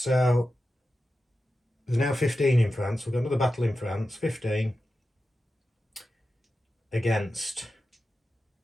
there's now 15 in France. We've got another battle in France. 15 against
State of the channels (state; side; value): normal; both; correlation 0.92